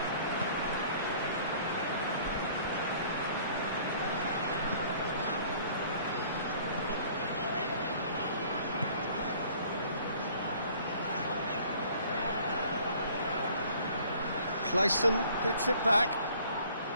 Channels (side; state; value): both; inverted; correlation -0.55